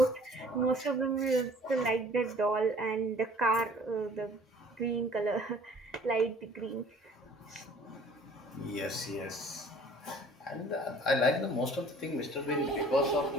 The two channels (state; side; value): normal; both; correlation 0.52